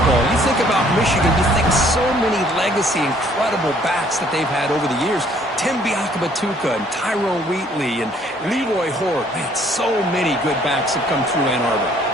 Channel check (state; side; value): normal; both; correlation 0.61